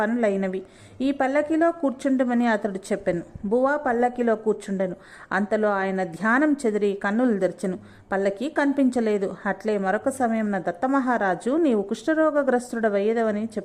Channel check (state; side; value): identical; both; correlation 1.00